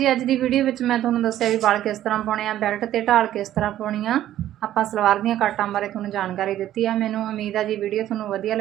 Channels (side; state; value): left; quieter; 12.6 dB